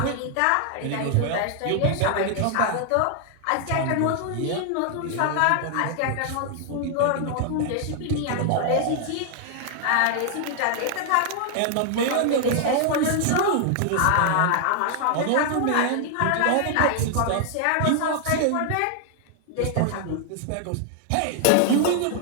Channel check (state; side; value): different; both; correlation 0.00